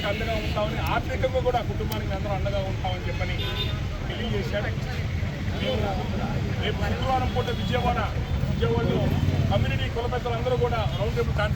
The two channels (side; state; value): both; identical; correlation 1.00